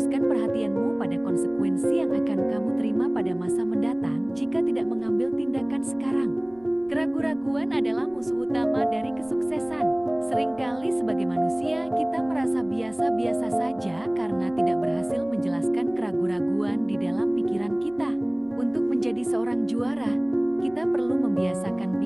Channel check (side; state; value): right; noise; rumble, 28 dB below the sound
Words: perhatianmu pada konsekuensi yang akan kamu terima pada masa mendatang jika tidak mengambil tindakan sekarang. Keraguan-raguan adalah musuh utama dari kesuksesan. Seringkali sebagai manusia kita merasa biasa-biasa saja karena tidak berhasil menjelaskan keraguan-raguan di dalam pikiran kita. Untuk menjadi seorang juara, kita perlu membiasakan